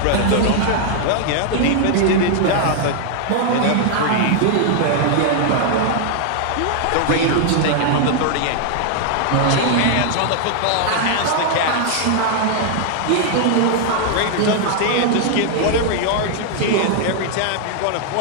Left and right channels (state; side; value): different; both; correlation 0.00